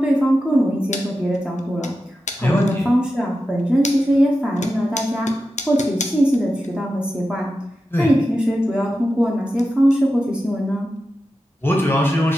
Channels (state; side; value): normal; both; correlation 0.91